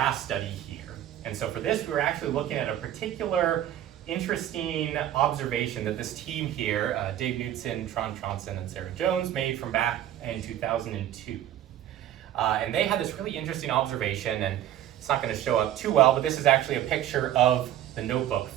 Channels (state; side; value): quieter; left; 11.8 dB